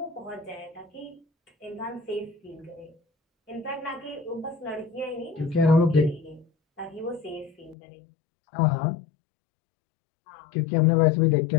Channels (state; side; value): drops out; right; at 7.8 s